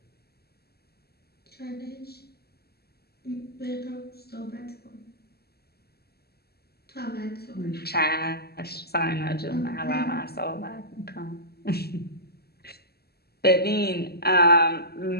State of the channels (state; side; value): late; right; 0.46 ms